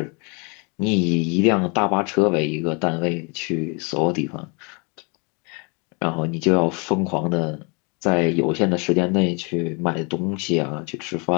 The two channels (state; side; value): quieter; right; 32.2 dB